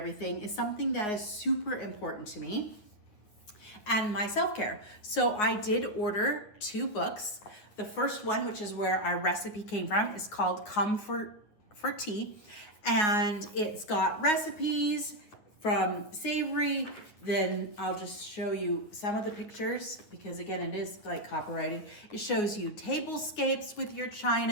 is something that is super important to me and my self-care. So I did order 2 books. The first one, which is where our recipe came from, is called Come for Tea. And it's got recipes from savory. Then I'll just show you some of the pictures because again, it is like copyrighted. It shows you tablescapes with your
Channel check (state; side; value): late; right; 9.6 ms